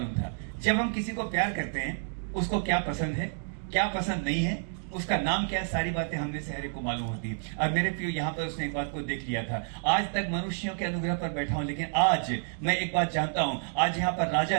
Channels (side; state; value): left; silent; digital silence